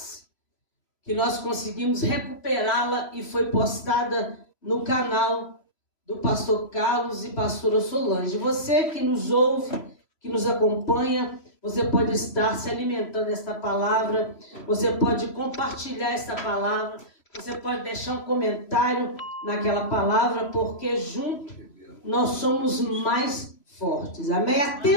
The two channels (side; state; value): right; late; 3.1 ms